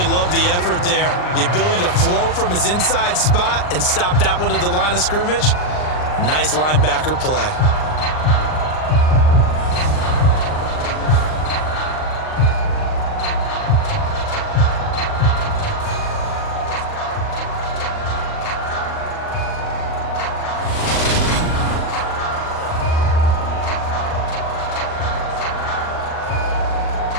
love the effort there. The ability to flow from his inside spot and stop that one at the line of scrimmage. Nice linebacker play.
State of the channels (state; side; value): late; right; 39 ms